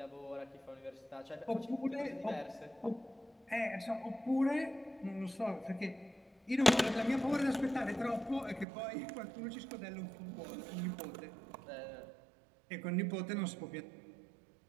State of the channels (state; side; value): drops out; left; at 8.7 s